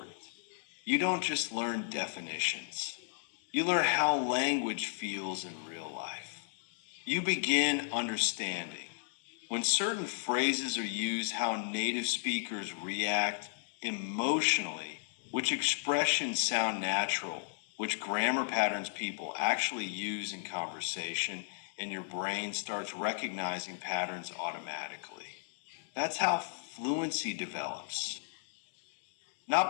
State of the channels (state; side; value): silent; right; digital silence